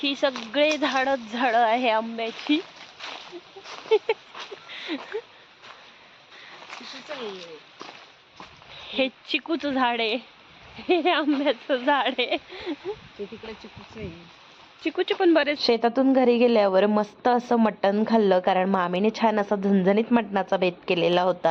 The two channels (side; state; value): both; identical; correlation 1.00